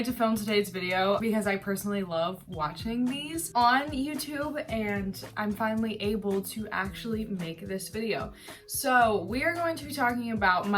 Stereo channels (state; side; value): identical; both; correlation 1.00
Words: to film today's video because I personally love watching these on YouTube and I'm finally able to actually make this video. So we are going to be talking about